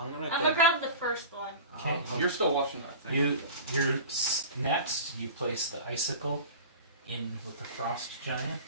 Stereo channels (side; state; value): both; inverted; correlation -0.35